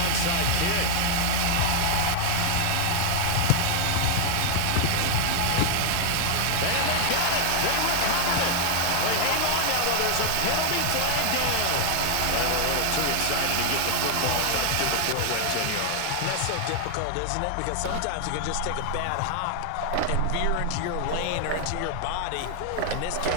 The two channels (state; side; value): different; both; correlation 0.00